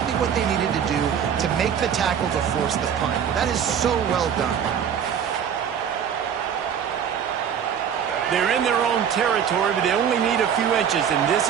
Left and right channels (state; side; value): quieter; left; 8.2 dB